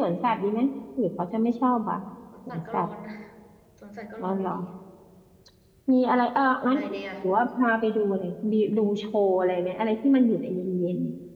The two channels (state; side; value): identical; both; correlation 1.00